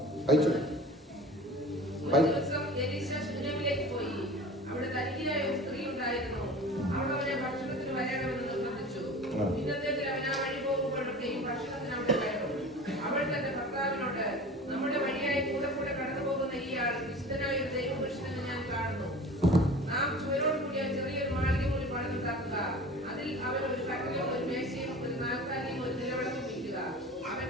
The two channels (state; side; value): normal; both; correlation 0.39